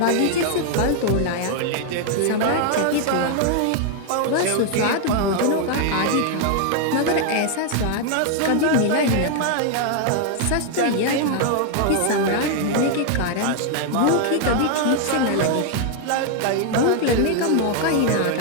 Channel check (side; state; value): both; different; correlation 0.00